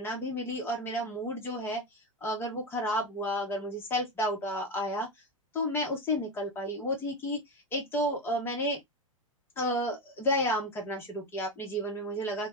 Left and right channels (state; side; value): normal; both; correlation 0.16